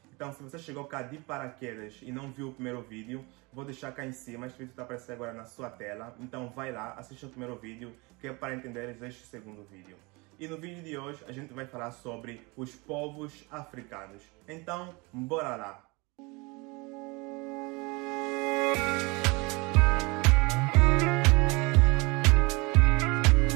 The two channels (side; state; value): left; quieter; 26.5 dB